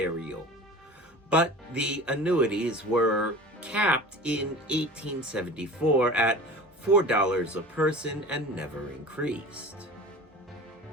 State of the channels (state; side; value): normal; both; correlation 0.38